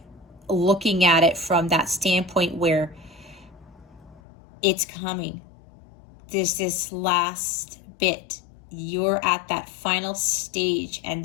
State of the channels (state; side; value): drops out; right; at 4.2 s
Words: looking at it from that standpoint where it's coming. There's this last bit. You're at that final stage, and